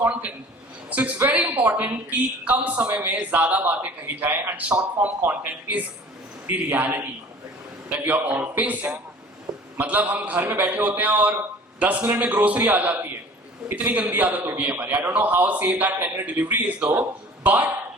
content. So it's very important कि कम समय में ज्यादा बातें कही जाएं, and short form content is the reality that we are all facing. मतलब हम घर में बैठे होते हैं और 10 मिनट में ग्रोसरी आ जाती है. इतनी गंदी आदत हो गई है हमारी. I don't know how safe that 10-minute delivery is though, but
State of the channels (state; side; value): normal; both; correlation 0.46